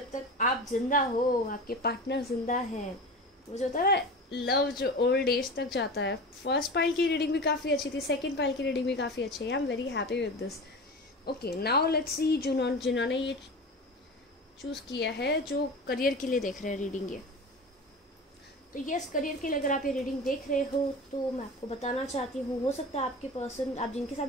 तक आप जिंदा हो, आपके पार्टनर जिंदा है, वो जो होता है लव जो ओल्ड एज तक जाता है। फर्स्ट पाइल की रीडिंग भी काफ़ी अच्छी थी, सेकंड पाइल की रीडिंग भी काफ़ी अच्छी है। I am very happy with this. Okay, now let's see जिन्होंने ये चूज़ किया है, जो करियर के लिए देख रहे हैं रीडिंग ये। तो यस, करियर के लिए अगर आप ये रीडिंग देख रहे हो तो मैं आपको बताना चाहती हूँ, हो सकता है आपके पर्सन, आप जिनके साथ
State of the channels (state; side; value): normal; both; correlation 0.31